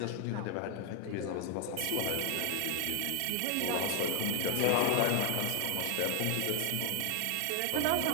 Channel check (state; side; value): different; both; correlation 0.00